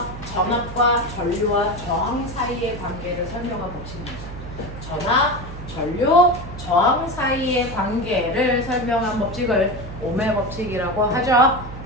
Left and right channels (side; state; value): right; noise; hum, 11 dB below the sound